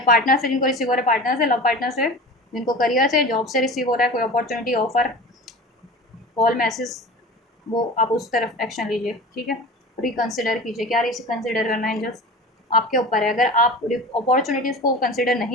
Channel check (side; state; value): both; normal; correlation 0.34